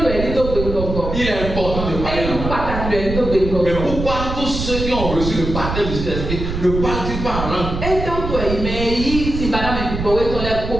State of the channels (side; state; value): right; noise; rumble, 5 dB below the sound